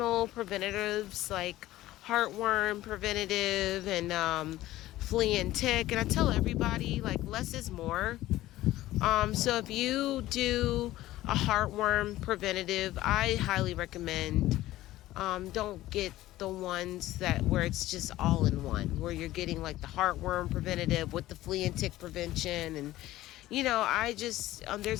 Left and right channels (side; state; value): right; quieter; 15.7 dB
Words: preventatives like heartworm preventative and flea and tick. And I tell everybody, like, less is more. So if you do a heartworm preventative, I highly recommend, don't get the ones that where it's just all in one, where you're getting like the heartworm preventative with the flea and tick prevention. And I just,